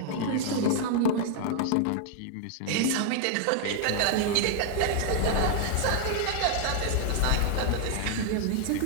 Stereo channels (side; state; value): both; different; correlation 0.00